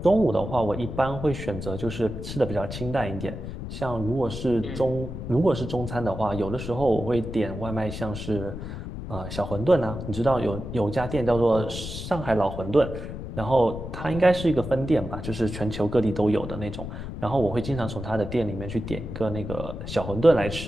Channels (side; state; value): left; noise; rumble, 8 dB below the sound